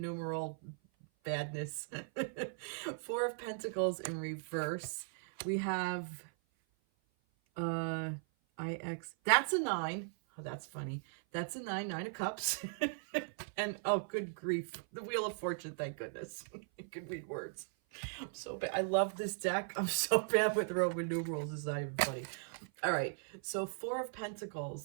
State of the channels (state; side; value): silent; left; 52 dB below the other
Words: numeral badness. 4 of Pentacles in reverse. We have IX. That's a 9. Oh, that's funny. That's a 9, 9 of Cups. And oh, good grief. The Wheel of Fortune, thank goodness. I can read words. I'm so bad. I love this deck. I'm so bad with Roman numerals. It's not even funny. All right, so 4 of